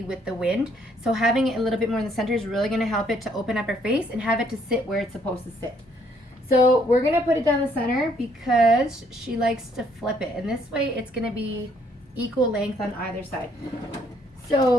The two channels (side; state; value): both; normal; correlation 0.67